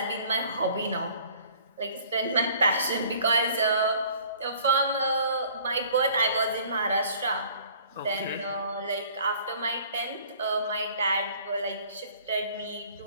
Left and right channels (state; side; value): inverted; both; correlation -0.53